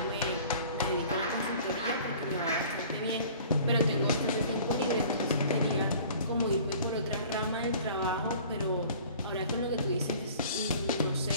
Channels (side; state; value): both; inverted; correlation -0.48